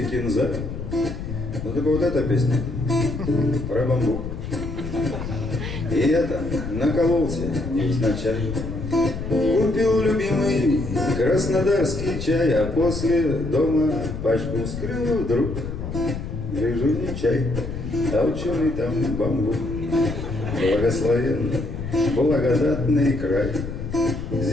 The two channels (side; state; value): left; noise; rumble, 7 dB below the sound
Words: кинза. Ну так вот эта песня про бамбук. И это накололся невзначай. Купил любимый краснодарский чай, а после дома пачку вскрыл вдруг. Гляжу, не чай, а ученый там бамбук. Благословенный, благодатный край.